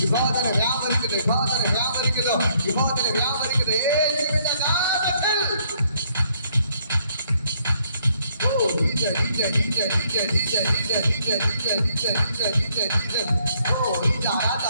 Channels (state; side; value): inverted; both; correlation -0.68